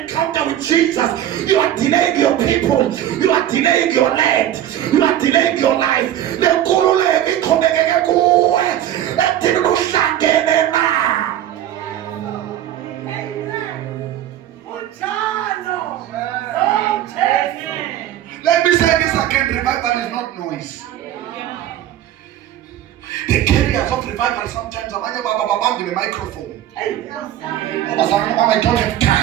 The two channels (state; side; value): quieter; left; 11.9 dB